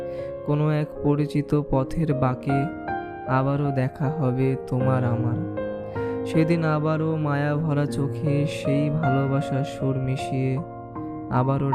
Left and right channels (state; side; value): identical; both; correlation 1.00